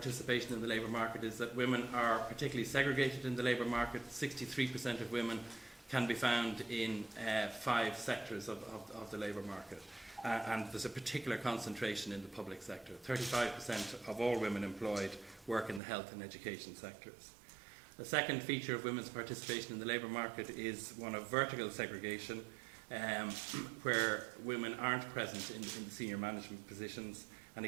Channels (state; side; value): drops out; left; at 15.8 s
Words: in the labour market is that women are particularly segregated in the labour market. 63% of women can be found in 5 sectors of the labour market. And there's a particular concentration in the public sector. 35% of all women employed work in the health and education sectors. The second feature of women's participation in the labour market is one of vertical segregation, where women aren't present in the senior management positions. And